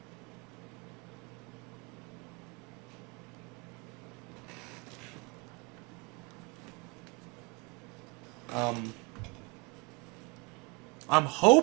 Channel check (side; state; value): left; quieter; 29.4 dB